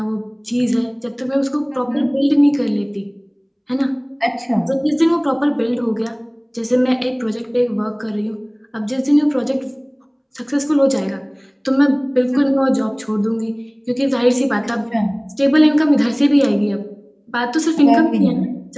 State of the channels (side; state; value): both; identical; correlation 1.00